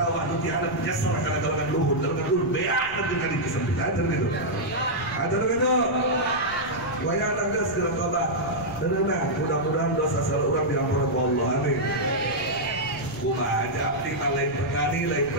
nu tiada nyesel kana galungan luhur beak nanti ka disempitan gitu. Ada begitu, wayang nangges dalam tobat, tenang. Mudah-mudahan dosa salah orang diampuni Allah, amin. Kumaha aja abdi lain petani, lain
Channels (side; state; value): left; noise; rumble, 18 dB below the sound